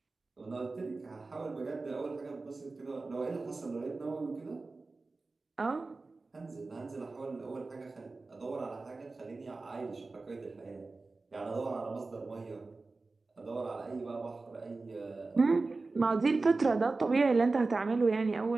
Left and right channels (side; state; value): left; quieter; 3.6 dB